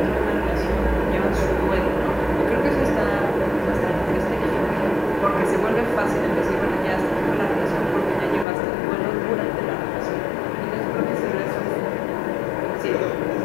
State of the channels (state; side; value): drops out; right; at 8.5 s